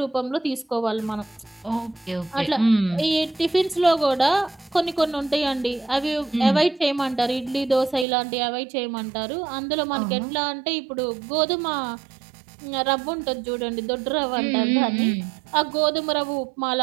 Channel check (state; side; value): drops out; left; at 8.1 s